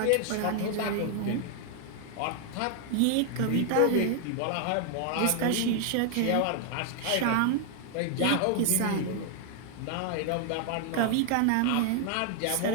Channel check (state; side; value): different; both; correlation 0.00